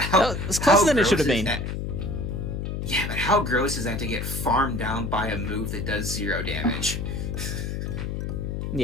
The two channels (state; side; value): noise; left; hum, 3 dB below the sound